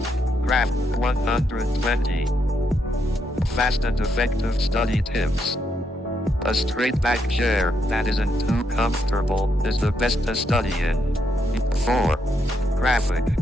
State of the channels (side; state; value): both; normal; correlation 0.78